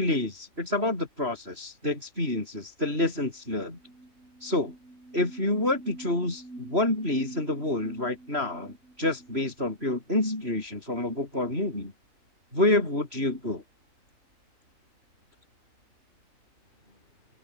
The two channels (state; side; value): late; left; 3.0 ms